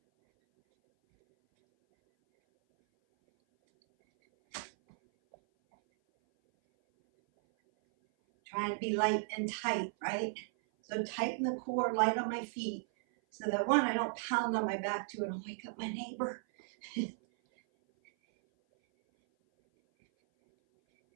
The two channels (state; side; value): silent; left; 54 dB below the other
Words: Trying to be light and tight, right? So tighten the core, light on my feet, so that one, I don't pound on my back too and I'll wake up my neighbor. So